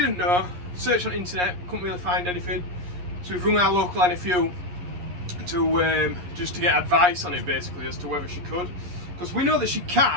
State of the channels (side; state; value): left; late; 11 ms